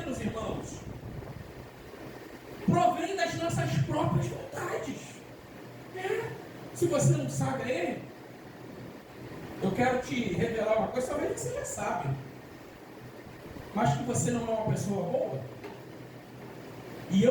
irmãos. Provém das nossas próprias vontades. Se você não sabe aí, eu quero te revelar uma coisa, talvez você já sabe, mas que você não é uma pessoa boa, e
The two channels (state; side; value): identical; both; correlation 1.00